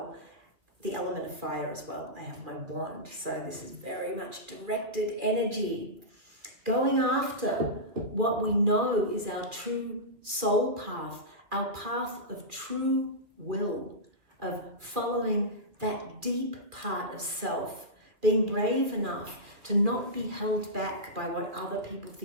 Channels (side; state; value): left; late; 2.2 ms